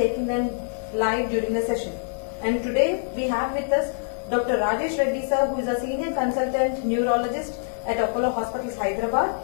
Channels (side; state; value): right; silent; digital silence